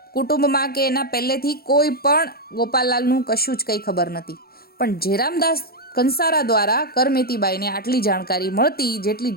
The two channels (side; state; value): right; late; 0.44 ms